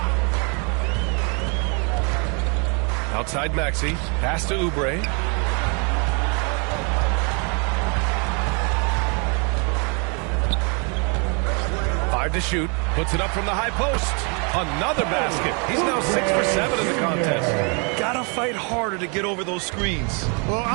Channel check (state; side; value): quieter; left; 35.3 dB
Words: Outside Maxey. Pass to Oubre. Five to shoot. Puts it up from the high post. Another basket. He's now 6 for 7 in the contest. Gotta fight harder to get over those screens. Well,